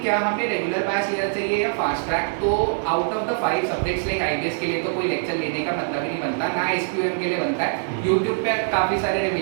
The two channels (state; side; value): silent; left; 55 dB below the other